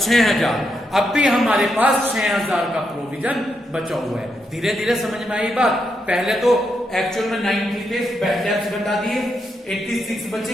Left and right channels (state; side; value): normal; both; correlation 0.82